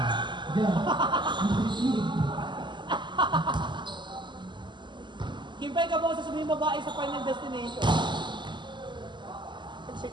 Yan. Receive. Kimpay ka ba sa sabihin babae sa final destination? Check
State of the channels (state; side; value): late; left; 0.22 ms